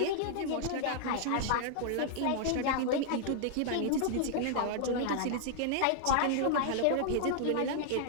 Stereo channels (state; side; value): different; both; correlation -0.01